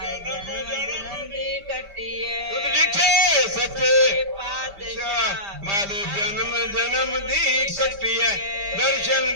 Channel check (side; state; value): left; late; 5.0 ms